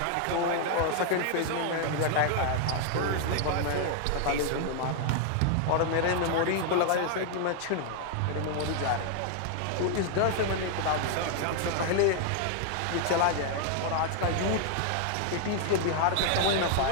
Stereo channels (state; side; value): different; both; correlation 0.00